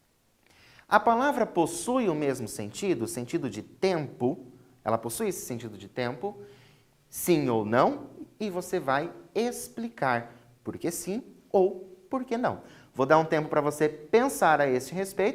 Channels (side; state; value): both; identical; correlation 1.00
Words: a palavra possui o mesmo sentido, o sentido de tempo. Ela possui esse sentido de tempo, sim ou não, e você vai explicar por que sim ou por que não. Vou dar um tempo para você pensar a esse